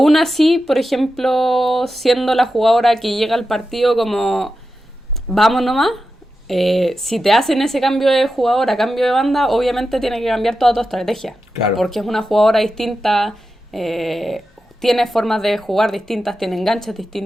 así, por ejemplo, siendo la jugadora que llega al partido como vamos nomás, si te hacen ese cambio de jugadora, cambio de banda, obviamente tiene que cambiar toda tu estrategia. Claro. Porque es una jugadora distinta, tiene formas de jugar distintas, tiene enganches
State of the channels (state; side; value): normal; both; correlation 0.91